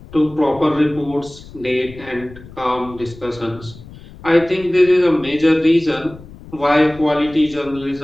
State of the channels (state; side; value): noise; left; rumble, 19 dB below the sound